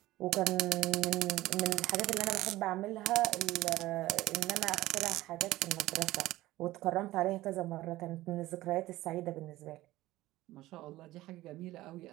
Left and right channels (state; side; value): quieter; left; 16.9 dB